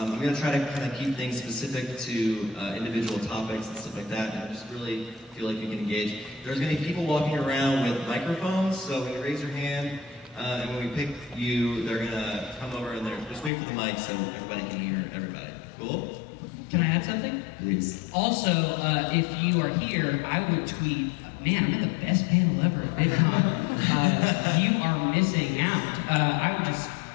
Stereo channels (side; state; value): right; drops out; at 13.5 s